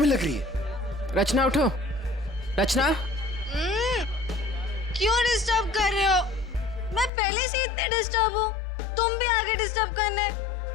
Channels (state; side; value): drops out; right; at 7.1 s